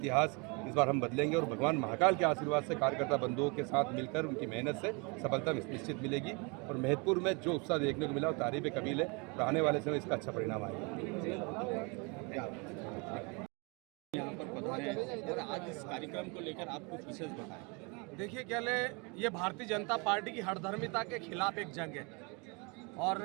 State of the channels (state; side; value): quieter; left; 30.9 dB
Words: इस बार हम बदलेंगे और भगवान महाकाल के आशीर्वाद से कार्यकर्ता बंधुओं के साथ मिलकर उनकी मेहनत से सफलता निश्चित मिलेगी। और महतपुर में जो उत्साह देखने को मिला वो तारीफ कबील है और आने वाले समय इसका अच्छा परिणाम आएगा। यहाँ पर पधारे हैं और आज इस कार्यक्रम को लेकर आप कुछ विशेष बताएं। देखिए क्या ले, ये भारतीय जनता पार्टी की हठधर्मिता के खिलाफ एक जंग है और